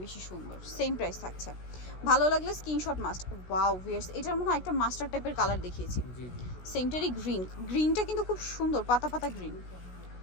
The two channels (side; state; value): right; late; 16 ms